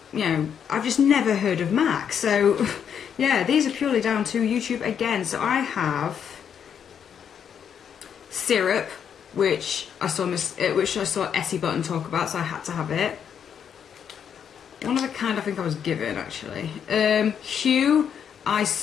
I've just never heard of MAC. So yeah, these are purely down to YouTube again. So I have Syrup, which I saw Essie Button talk about, so I had to have it. One of the kind I think I was given, actually. Hue, I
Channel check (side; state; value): right; quieter; 8.0 dB